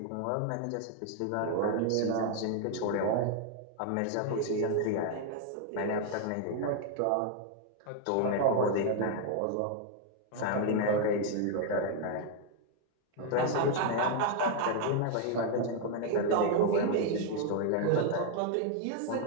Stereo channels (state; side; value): different; both; correlation 0.00